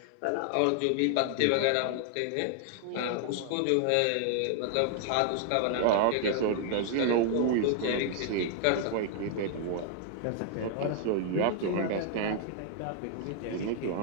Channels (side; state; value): both; different; correlation 0.00